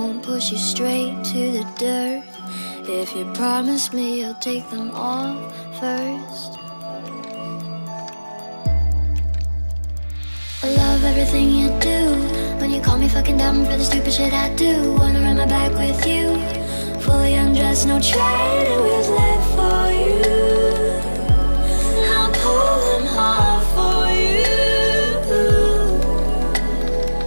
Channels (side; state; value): both; inverted; correlation -1.00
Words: push you straight to the dirt. If you promise me you'll take them off first. I love everything you do. When you call me fucking dumb for the stupid shit I do. Wanna run my back with you, fully undressed, no training wheels left for you. I'll pull them off for you.